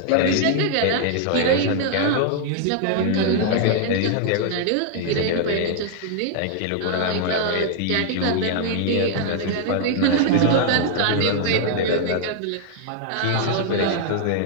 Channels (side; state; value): both; different; correlation 0.00